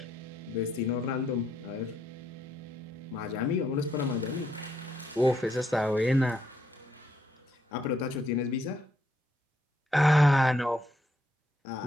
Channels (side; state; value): both; normal; correlation 0.75